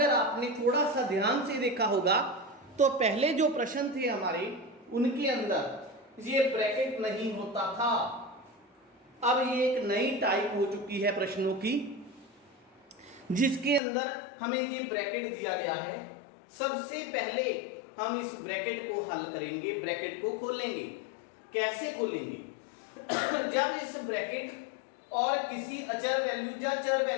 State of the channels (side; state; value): right; drops out; at 13.8 s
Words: आपने थोड़ा सा ध्यान से देखा होगा तो पहले जो प्रश्न थे हमारे, उनके अंदर ये ब्रैकेट नहीं होता था। अब ये एक नई टाइप हो चुकी है प्रश्नों की, जिसके अंदर हमें ये ब्रैकेट दिया गया है। सबसे पहले हम इस ब्रैकेट को हल करेंगे, ब्रैकेट को खोलेंगे। कैसे खोलेंगे? जब इस ब्रैकेट और किसी अचर वैल्यू या चर